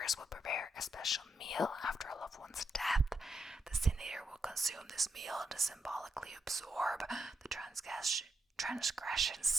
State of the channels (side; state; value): both; normal; correlation 0.83